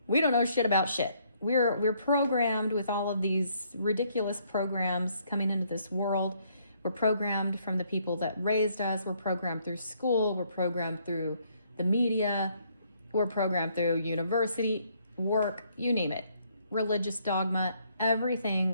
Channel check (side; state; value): both; inverted; correlation -0.68